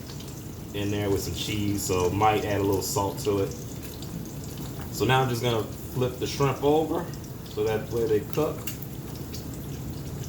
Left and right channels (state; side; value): identical; both; correlation 1.00